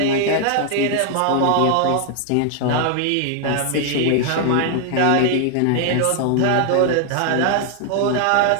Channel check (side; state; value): both; different; correlation 0.00